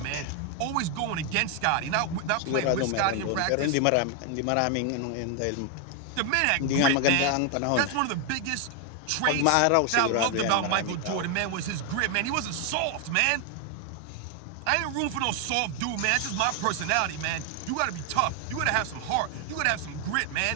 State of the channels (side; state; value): both; different; correlation 0.01